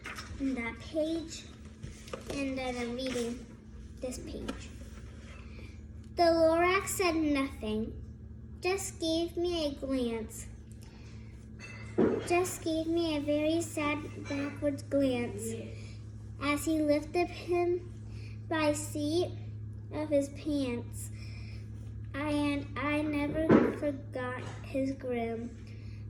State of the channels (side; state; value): both; identical; correlation 1.00